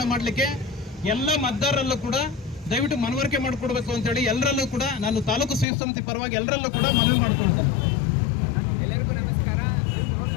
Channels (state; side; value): drops out; right; at 5.7 s